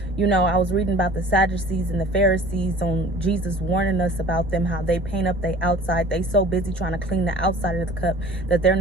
I was reading about the Sadducees and the Pharisees on Jesus warning us about them, how they paint up their outside. They so busy trying to clean the outside of the cup that they're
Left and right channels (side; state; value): both; normal; correlation 0.46